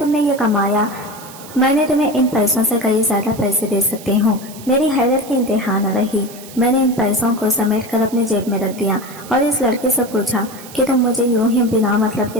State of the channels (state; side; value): noise; right; hiss, 17 dB below the sound